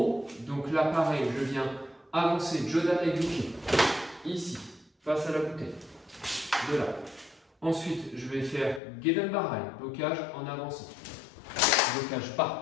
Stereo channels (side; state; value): right; drops out; at 8.8 s